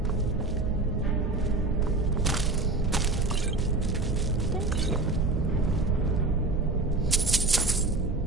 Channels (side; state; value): left; quieter; 3.2 dB